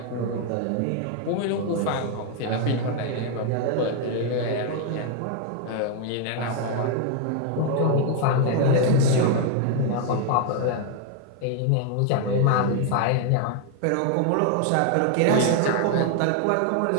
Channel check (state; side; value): different; both; correlation 0.00